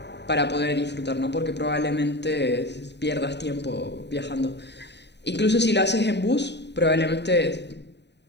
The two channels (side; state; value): right; late; 0.50 ms